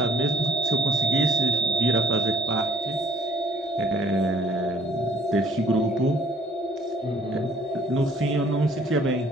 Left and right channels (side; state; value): both; normal; correlation 0.61